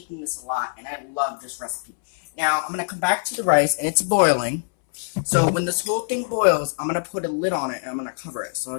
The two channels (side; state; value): right; silent; 61 dB below the other